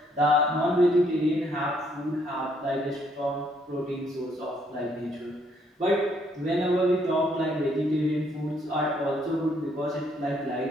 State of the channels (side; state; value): both; normal; correlation 0.69